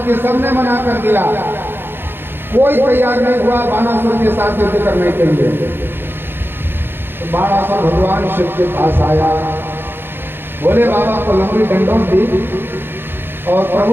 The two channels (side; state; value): left; late; 0.10 ms